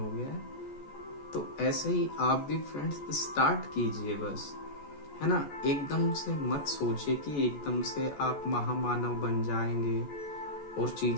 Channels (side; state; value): right; late; 14 ms